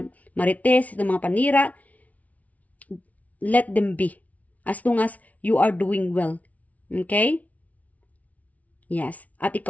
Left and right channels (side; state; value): right; late; 0.070 ms